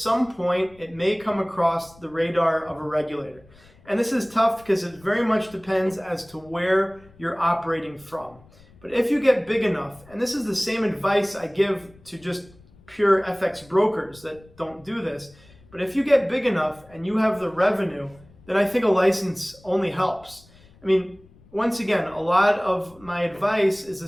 point it may come across the radar of a regulator. And this is tough because it very much depends as to where you're operating from. But if you get big enough, and this is the same advice I give to just pure FX brokers that don't do this, but if you get big enough and you have the revenue, then I think a license only helps. I mean, once again, a lot of my advice is the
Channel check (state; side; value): noise; left; rumble, 26 dB below the sound